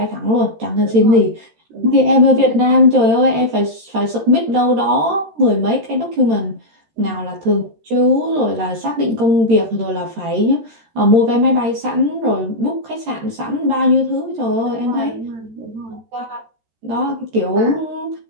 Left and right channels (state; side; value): late; left; 13 ms